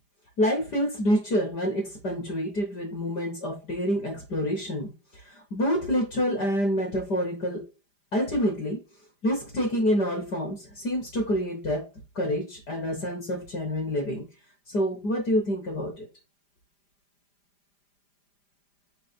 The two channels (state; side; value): late; right; 5.0 ms